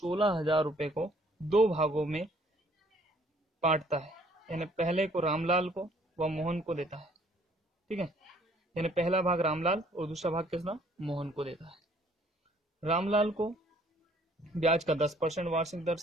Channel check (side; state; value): both; normal; correlation 0.61